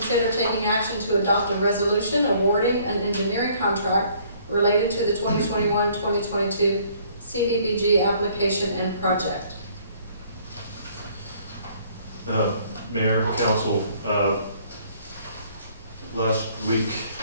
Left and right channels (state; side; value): inverted; both; correlation -0.60